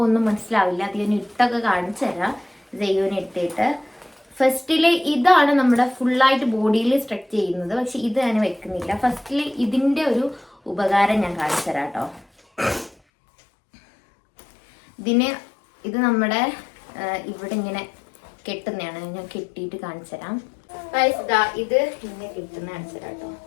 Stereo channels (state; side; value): drops out; right; at 13.0 s